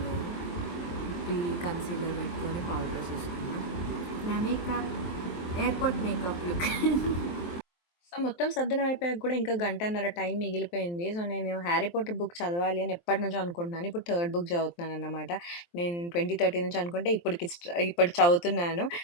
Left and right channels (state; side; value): late; right; 23 ms